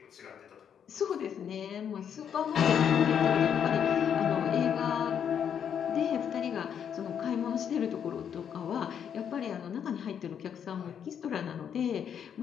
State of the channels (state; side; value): quieter; right; 8.3 dB